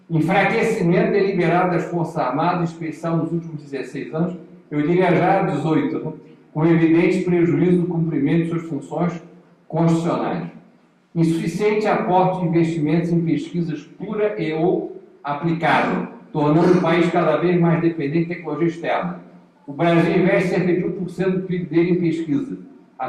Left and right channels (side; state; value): both; identical; correlation 1.00